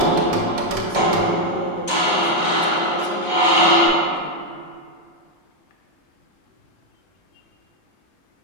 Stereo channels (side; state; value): right; late; 1.3 ms